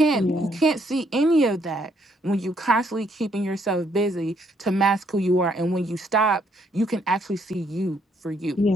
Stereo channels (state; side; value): normal; both; correlation 0.70